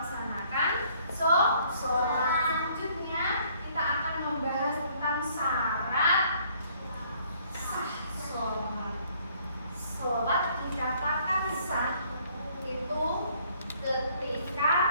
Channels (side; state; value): both; inverted; correlation -0.62